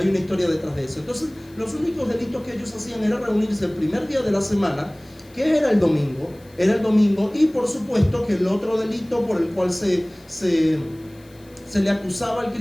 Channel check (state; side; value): noise; left; hiss, 29 dB below the sound